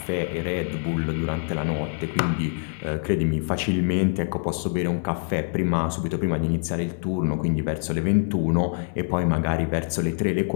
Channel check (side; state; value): right; silent; 57 dB below the other